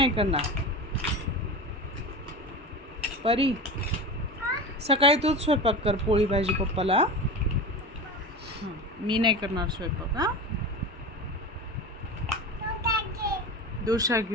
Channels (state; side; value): normal; both; correlation 0.27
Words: करणार. परी सकाळी तूच स्वयंपाक कर, पोळी भाजी पप्पाला. मी नाही करणार स्वयंपाक. हा डोसा